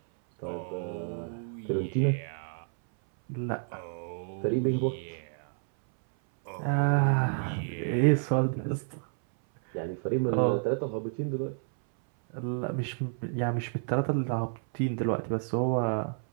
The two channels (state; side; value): silent; left; 58 dB below the other